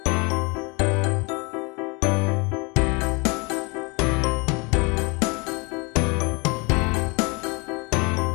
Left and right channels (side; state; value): right; quieter; 29.0 dB